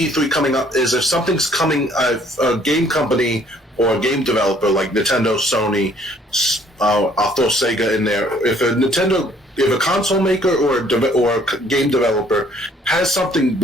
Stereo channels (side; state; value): both; normal; correlation 0.61